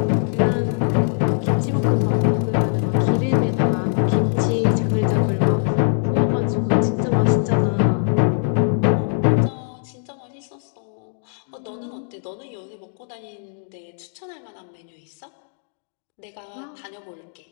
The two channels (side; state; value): right; silent; digital silence